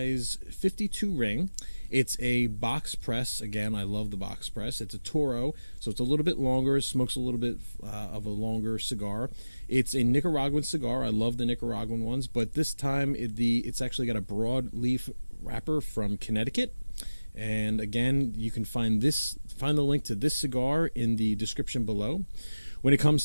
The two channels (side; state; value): both; inverted; correlation -0.99